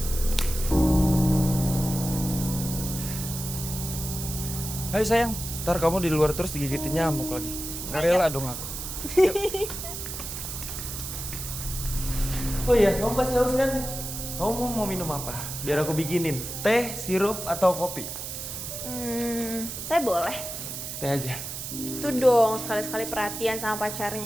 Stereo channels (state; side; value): noise; right; hiss, 7 dB below the sound